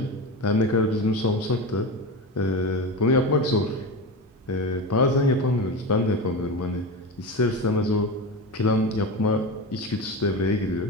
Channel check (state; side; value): normal; both; correlation 0.22